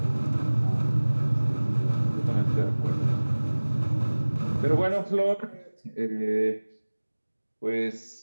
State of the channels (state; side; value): inverted; both; correlation -1.00